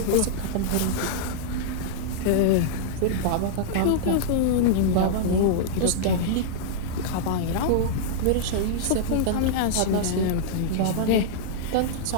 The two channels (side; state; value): both; different; correlation -0.02